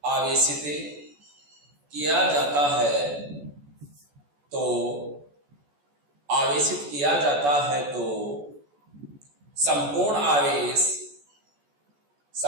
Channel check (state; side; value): late; left; 14 ms